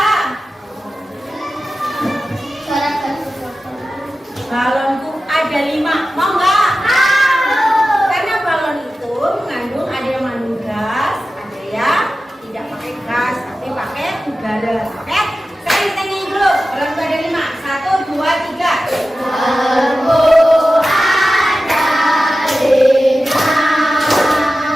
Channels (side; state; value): both; normal; correlation 0.94